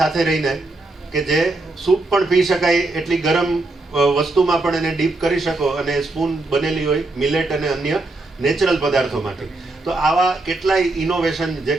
સાથે રહીને કે જે સૂપ પણ પી શકાય એટલી ગરમ વસ્તુમાં પણ એને ડીપ કરી શકો, અને સ્પૂન બનેલી હોય મિલેટ અને અન્ય નેચરલ પદાર્થોમાંથી. તો આવા કેટલાય ઇનોવેશન જે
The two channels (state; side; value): quieter; left; 3.0 dB